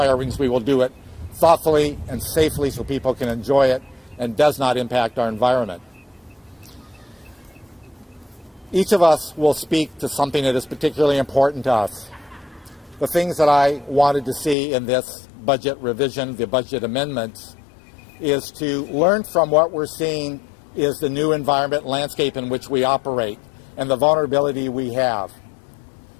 rings, we will do it thoughtfully and safely so people can enjoy it and does not impact our environment. Each of us will speak to something that is particularly important to us. The things that I wanted to see in this budget revision, the budget amendments, is to learn from what we're seeing is the new environment landscape in which we operate and the vulnerability we have.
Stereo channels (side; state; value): right; drops out; at 14.6 s